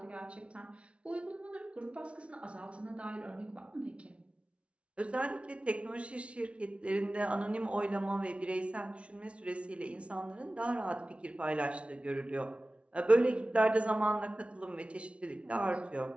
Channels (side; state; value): left; late; 0.061 ms